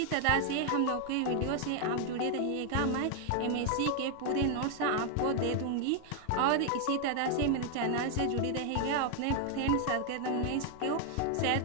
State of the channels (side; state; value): both; different; correlation 0.00